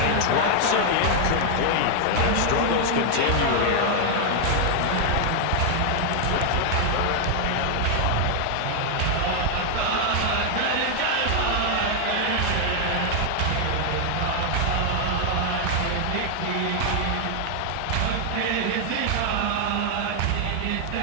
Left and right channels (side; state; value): both; different; correlation 0.00